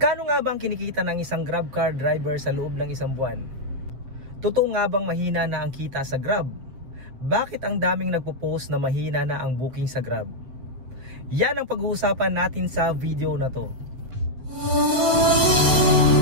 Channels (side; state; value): left; late; 7.8 ms